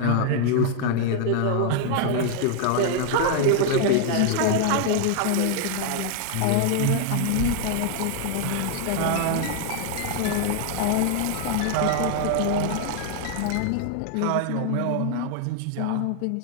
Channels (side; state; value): both; different; correlation 0.00